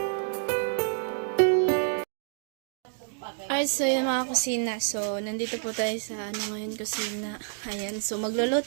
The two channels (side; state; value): left; silent; digital silence